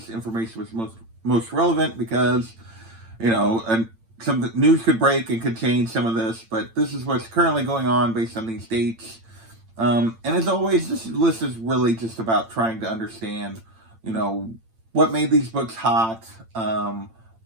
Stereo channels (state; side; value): late; left; 8.9 ms